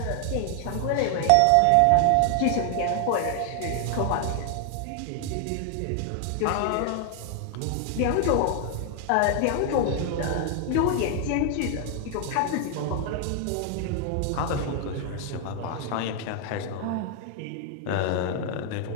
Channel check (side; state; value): both; different; correlation 0.00